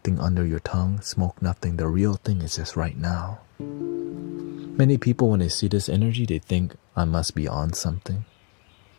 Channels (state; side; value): quieter; right; 36.8 dB